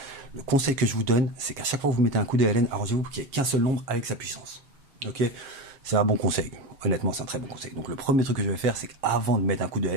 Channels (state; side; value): late; left; 7.3 ms